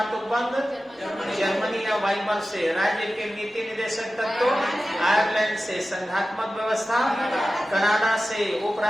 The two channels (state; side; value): normal; both; correlation 0.94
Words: उपबंध जर्मनी या वाइमर से। राज्य के नीति निदेशक तत्व आयरलैंड से। संघात्मक व्यवस्था कनाडा से।